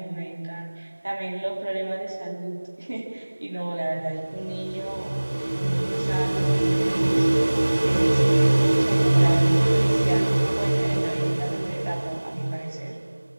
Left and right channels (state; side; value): inverted; both; correlation -1.00